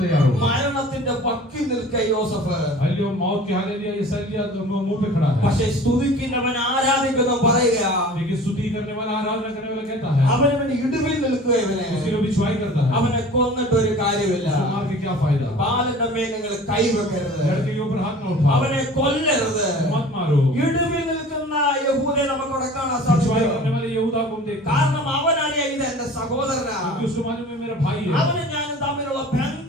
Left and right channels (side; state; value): both; normal; correlation 0.43